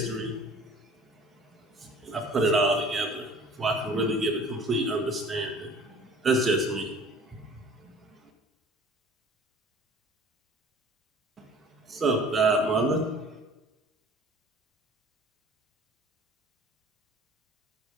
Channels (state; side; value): normal; both; correlation 0.47